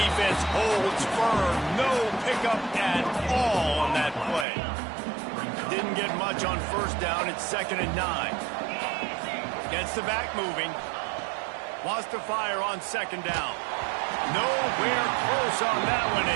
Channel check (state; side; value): drops out; left; at 4.5 s